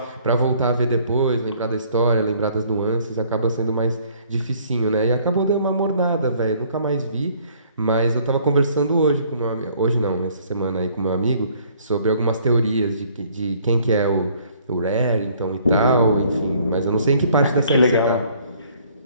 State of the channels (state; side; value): inverted; both; correlation -0.60